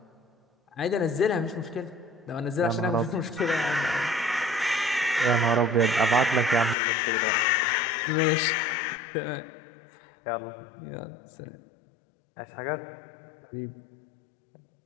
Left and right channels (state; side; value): drops out; right; at 6.8 s